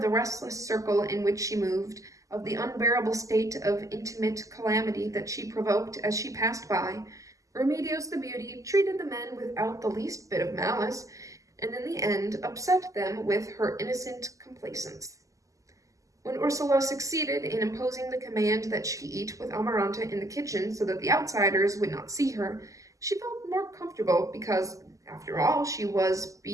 the restless circle in which she moved, of the unbearable state of intimate calamity that she provoked as she passed by. Remedios the beauty treated the men without the least bit of malice, and in the end upset them with her innocent complacence. When Ursula succeeded in imposing the command that she eat with Amaranta in the kitchen so that the outsiders would not see her, she felt more comfortable because, after all, she was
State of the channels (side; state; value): left; late; 0.16 ms